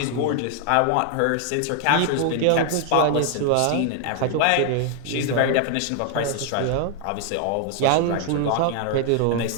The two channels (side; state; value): both; different; correlation 0.00